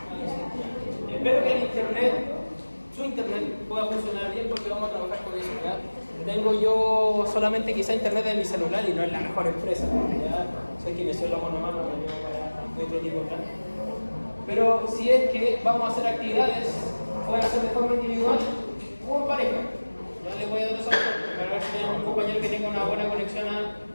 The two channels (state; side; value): inverted; both; correlation -1.00